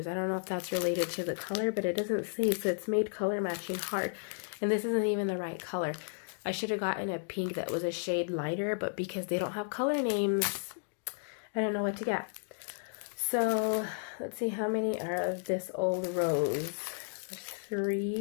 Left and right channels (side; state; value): right; silent; digital silence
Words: I don't know if that's related to the color, but it doesn't say, so it's made color matching hard. And this isn't even the right color. I should have gotten a pink that was a shade lighter, but because they don't have color names, I don't know what to get. So let's see how many are of this old rose. There's